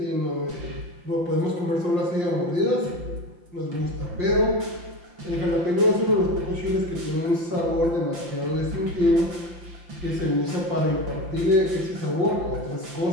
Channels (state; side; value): late; left; 5.9 ms